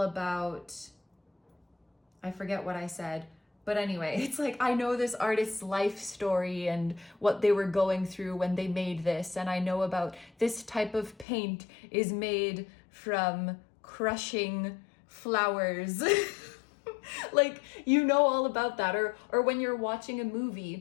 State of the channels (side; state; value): right; drops out; at 11.2 s